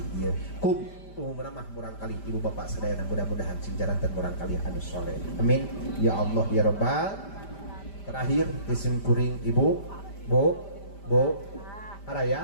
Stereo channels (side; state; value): right; late; 5.1 ms